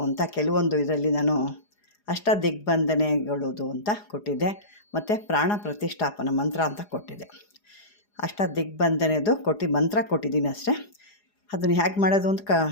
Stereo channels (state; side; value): late; right; 4.9 ms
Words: ಅಂತ ಕೆಲವೊಂದು ಇದರಲ್ಲಿ ನಾನು ಅಷ್ಟದಿಗ್ಬಂಧನೆಗಳದು ಅಂತ ಕೊಟ್ಟಿದ್ದೆ, ಮತ್ತು ಪ್ರಾಣ ಪ್ರತಿಷ್ಠಾಪನ ಮಂತ್ರ ಅಂತ ಕೊಟ್ಟಿದ್ದೆ. ಅಷ್ಟದಿಗ್ಬಂಧನೆದು ಮಂತ್ರ ಕೊಟ್ಟಿದ್ದೀನಿ ಅಷ್ಟೇ. ಅದನ್ನು ಹೇಗೆ ಮಾಡೋದು ಅಂತ